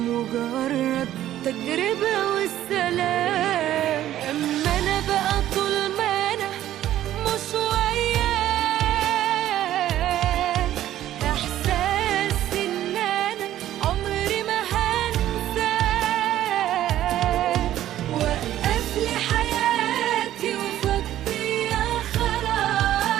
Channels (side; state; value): left; quieter; 12.8 dB